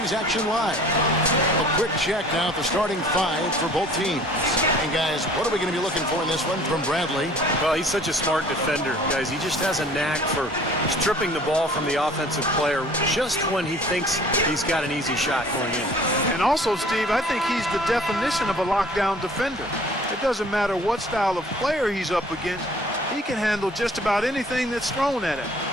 action live. A quick check now at the starting five for both teams. And, guys, what are we going to be looking for in this one from Bradley? Well, he's such a smart defender, guys. He just has a knack for stripping the ball from the offensive player just when he thinks he's got an easy shot going in. And also, Steve, I think he's the definition of a lockdown defender. It doesn't matter what style of player he's up against. He can handle just about anything that's thrown at him.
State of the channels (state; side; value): normal; both; correlation 0.51